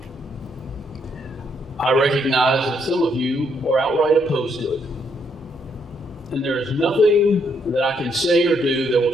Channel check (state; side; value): normal; both; correlation 0.74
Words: I recognize that some of you are outright opposed to it. And there is nothing that I can say or do that